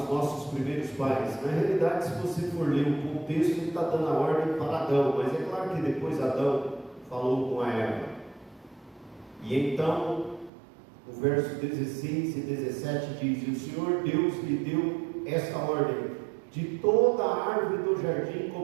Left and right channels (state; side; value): drops out; left; at 10.5 s